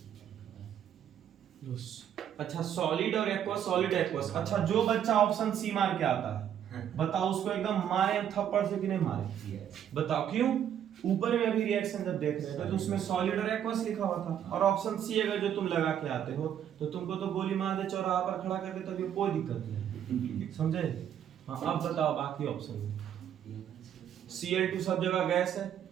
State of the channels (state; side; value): quieter; left; 9.7 dB